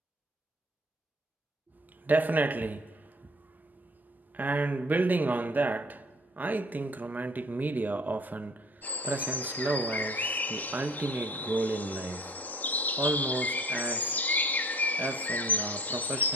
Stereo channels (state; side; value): normal; both; correlation 0.49